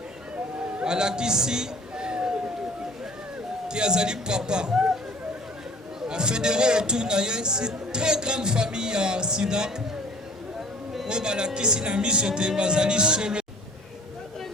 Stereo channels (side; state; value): both; normal; correlation 0.50